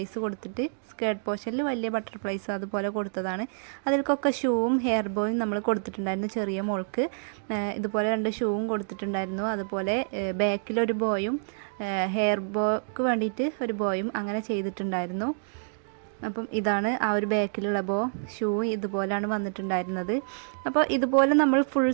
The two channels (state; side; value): silent; left; digital silence